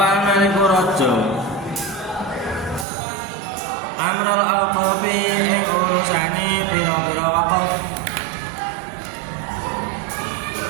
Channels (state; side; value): drops out; left; at 2.9 s